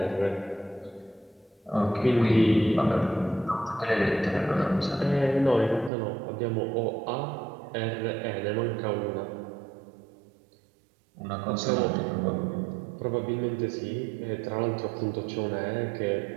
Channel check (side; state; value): left; drops out; at 5.9 s